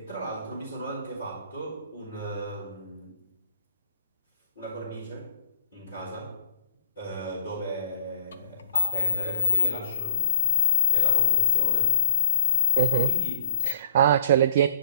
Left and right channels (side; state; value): both; inverted; correlation -0.62